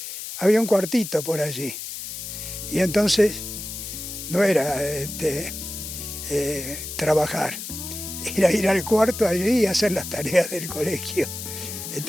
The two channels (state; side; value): noise; left; hiss, 8 dB below the sound